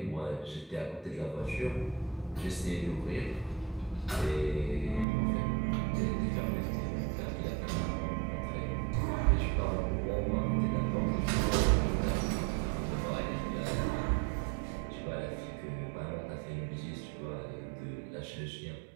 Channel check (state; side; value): drops out; left; at 5.1 s